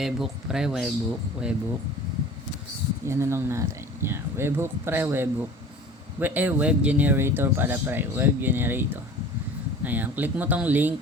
pre, webhook. Yan na lang natin. Yan, webhook pre, webhook. Web generator pala pre, web generator. Ayan, click mo tong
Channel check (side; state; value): both; normal; correlation 0.42